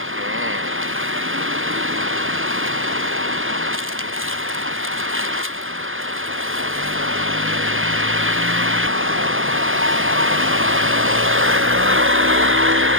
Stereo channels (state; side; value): late; left; 0.59 ms